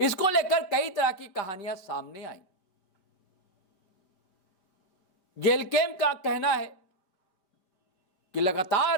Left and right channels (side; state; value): right; late; 5.1 ms